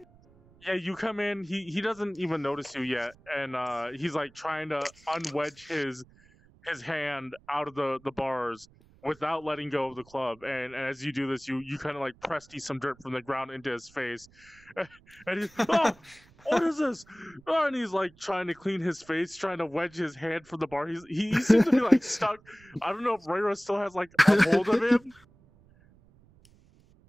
Yeah, you come in. He doesn't even notice you yet, and he's like trying to unwedge his hand out of the bars without letting go of the club. And as you do this, you kind of like press some dirt from the ground into his face, and he's oh, what is this? Oh, and he's like trying to clean his face, trying to wedge his hand from the bar. He seems to be like stuck. I don't know if Reira still has like a hold of him.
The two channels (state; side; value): noise; right; rumble, 28 dB below the sound